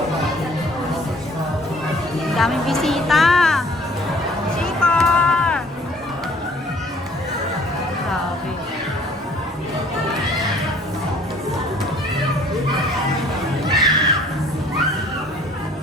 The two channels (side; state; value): both; normal; correlation 0.55